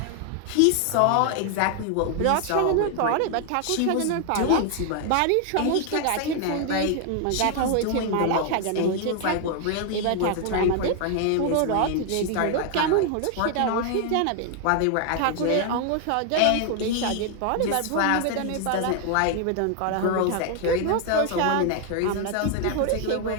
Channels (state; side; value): different; both; correlation 0.00